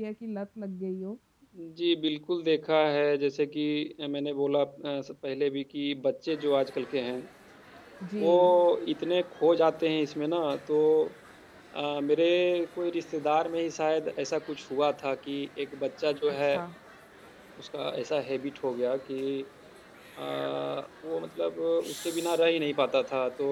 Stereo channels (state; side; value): identical; both; correlation 1.00